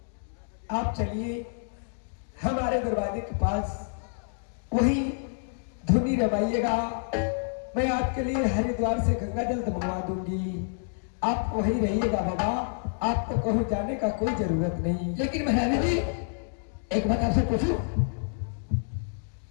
आप चलिए हमारे दरवाजे के पास, वही धुनी रमाइएगा। मैं आपके लिए हरिद्वार से गंगा जल मंगवा दूंगी, आप वहीं रहिएगा बाबा, आपको कहीं जाने का कोई जरूरत नहीं। लेकिन महारानी जी एक बात आपसे पूछूं,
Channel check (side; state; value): right; silent; digital silence